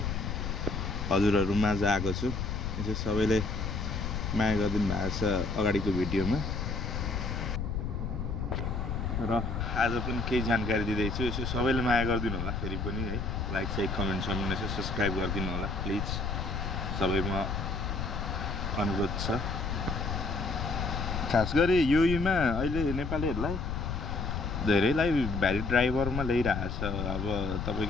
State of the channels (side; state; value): left; noise; rumble, 2 dB below the sound